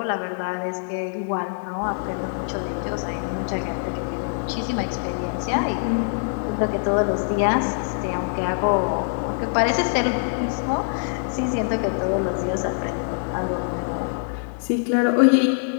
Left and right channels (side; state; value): right; silent; 63 dB below the other